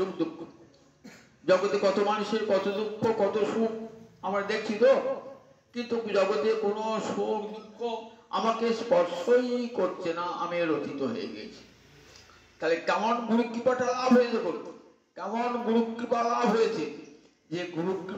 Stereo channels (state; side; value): identical; both; correlation 1.00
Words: দুঃখ, জগতে কত মানুষের কত দুঃখ কত সুখ আমরা দেখছি তো, কিন্তু জগতে কোনো সুখ দুঃখ আমাকে স্পর্শই করছে না, আমি রচিত হয়ে গেছি। তাহলে কেমন গুরু কৃপাটা লাভ হয়েছে? কেমন গুরু কৃপা লাভ হয়েছে? যে গুরু